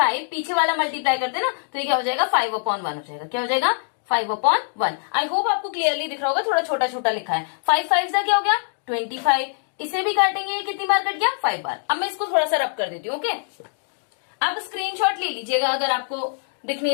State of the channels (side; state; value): right; silent; digital silence